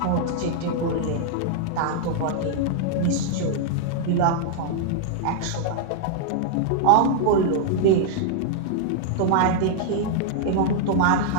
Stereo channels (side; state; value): both; different; correlation -0.01